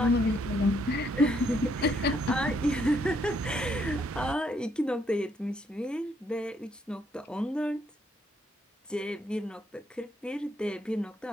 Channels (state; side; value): normal; both; correlation 0.72